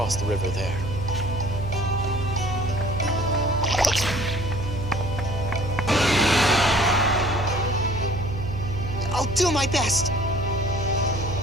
the river there. do my best.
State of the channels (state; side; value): noise; right; hum, 6 dB below the sound